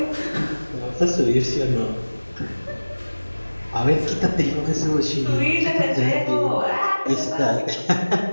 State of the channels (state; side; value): inverted; both; correlation -1.00